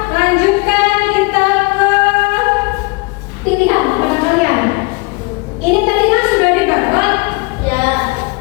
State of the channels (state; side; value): quieter; right; 28.0 dB